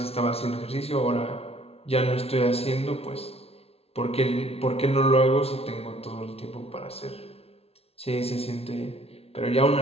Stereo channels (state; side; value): late; right; 0.29 ms